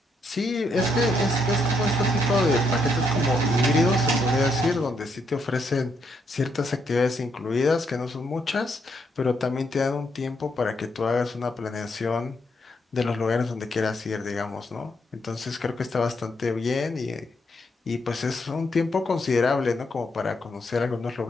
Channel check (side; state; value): both; normal; correlation 0.77